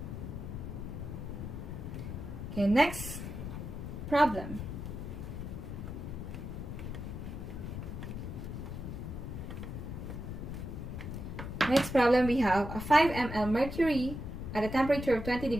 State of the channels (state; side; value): noise; left; rumble, 6 dB below the sound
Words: Okay, next problem. Next problem, we have a 5 ml mercury at a temperature of 20